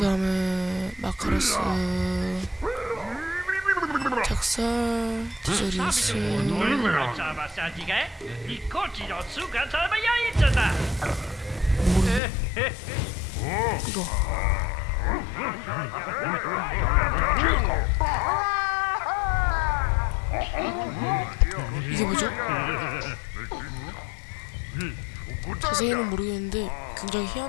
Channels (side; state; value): right; drops out; at 12.2 s